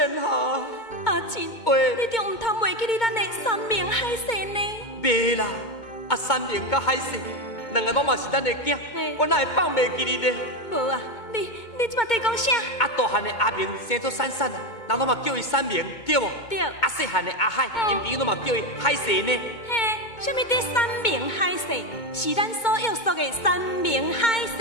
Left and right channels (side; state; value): right; late; 2.2 ms